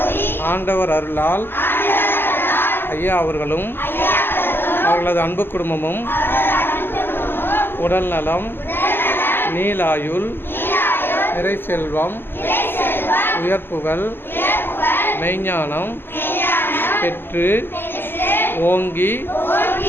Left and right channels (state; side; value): late; right; 0.10 ms